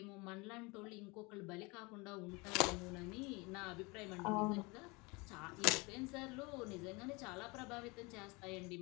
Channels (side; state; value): right; quieter; 26.5 dB